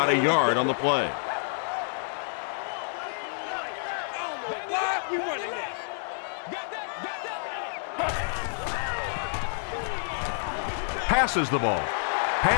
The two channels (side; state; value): right; silent; digital silence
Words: a yard on the play. Passes the ball.